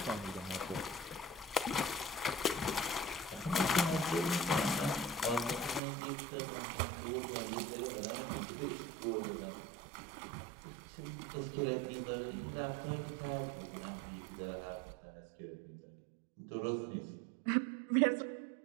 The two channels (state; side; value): drops out; left; at 5.8 s